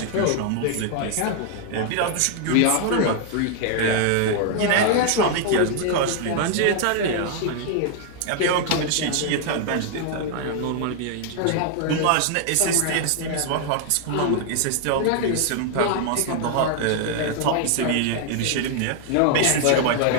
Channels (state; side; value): different; both; correlation 0.00